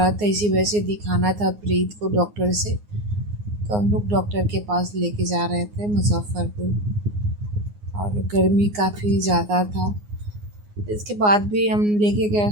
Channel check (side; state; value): left; late; 9.6 ms